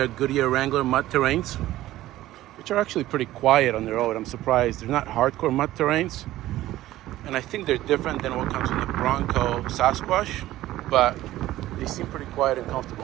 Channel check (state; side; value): quieter; left; 15.3 dB